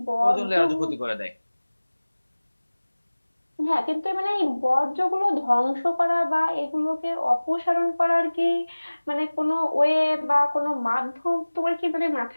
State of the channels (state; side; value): inverted; both; correlation -1.00